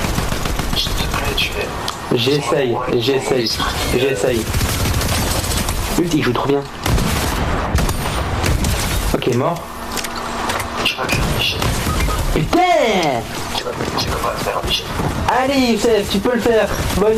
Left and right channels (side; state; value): both; identical; correlation 1.00